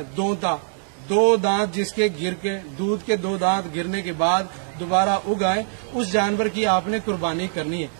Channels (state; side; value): silent; left; digital silence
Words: دو دانت جس کے گر کے دودھ کے 2 دانت گرنے کے بعد دوبارہ اگ آئے، اس جانور کی آپ نے قربانی کرنی ہے